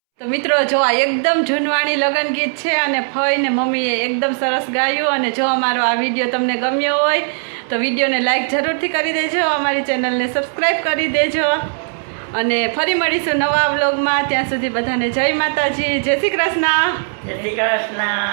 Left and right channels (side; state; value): left; silent; 67 dB below the other